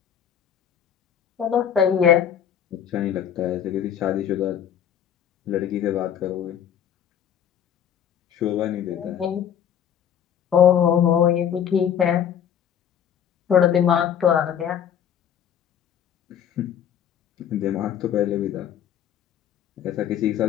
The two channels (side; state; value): right; quieter; 9.2 dB